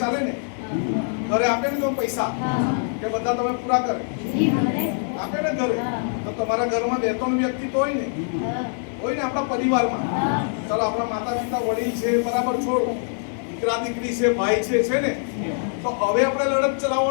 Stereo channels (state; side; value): silent; right; 61 dB below the other